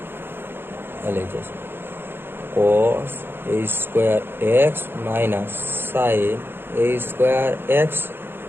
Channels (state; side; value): late; left; 0.10 ms